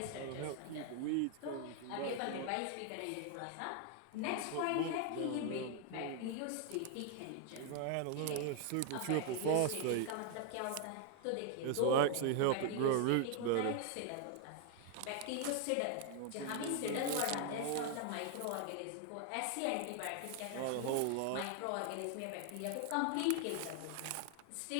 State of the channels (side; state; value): both; different; correlation 0.00